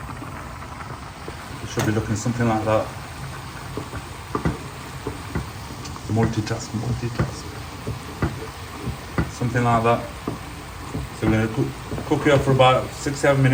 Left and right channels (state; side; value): identical; both; correlation 1.00